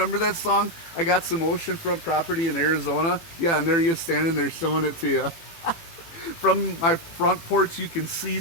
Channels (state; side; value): late; right; 18 ms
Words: that song? I got some oceanfront property in Arizona. Yeah, and there you're standing there showing it to you. From my front porch, you can see